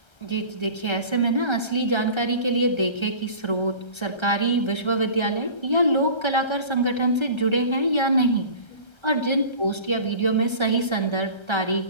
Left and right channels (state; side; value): late; right; 1.3 ms